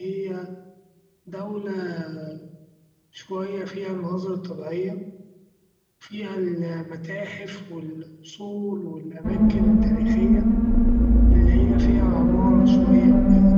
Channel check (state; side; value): identical; both; correlation 1.00